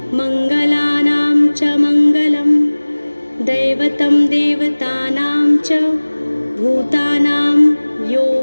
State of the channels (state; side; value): inverted; both; correlation -1.00